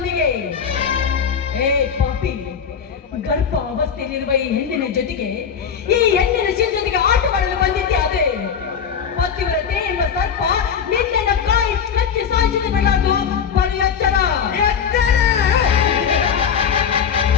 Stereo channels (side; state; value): right; quieter; 7.2 dB